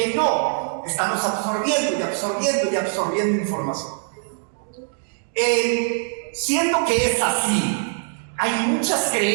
no. Estamos absorbiendo información. Siendo que es así, hay muchas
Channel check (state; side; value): silent; left; digital silence